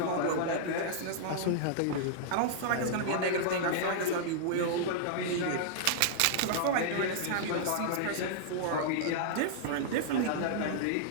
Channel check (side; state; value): both; different; correlation -0.01